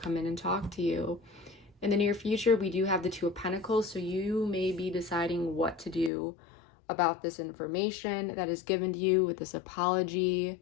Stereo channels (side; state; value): right; drops out; at 6.1 s